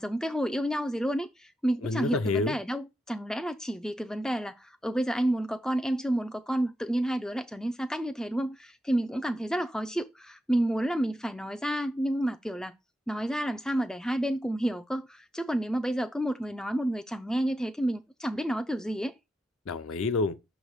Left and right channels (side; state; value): both; normal; correlation 0.87